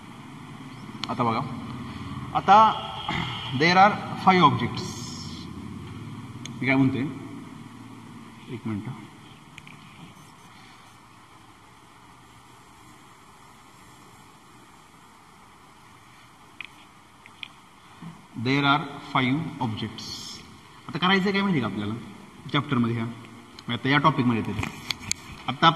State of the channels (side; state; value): both; identical; correlation 1.00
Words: आता बघा, आता देर आर 5 ऑब्जेक्ट्स. मी काय म्हणते, एक मिनिट. There are 5 objects. आता करायचं काय माहिती का आपल्याला चॅप्टरमध्ये, आता या टॉपिकमध्ये येते. आता